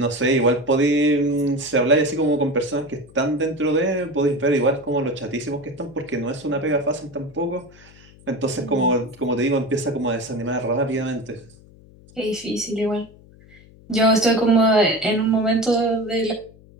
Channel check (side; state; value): left; noise; hum, 24 dB below the sound